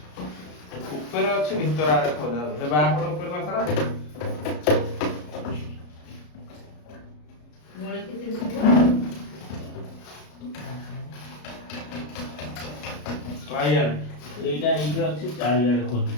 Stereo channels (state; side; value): late; right; 33 ms